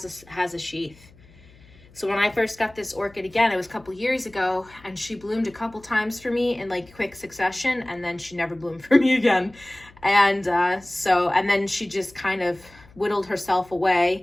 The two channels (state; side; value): noise; left; hum, 25 dB below the sound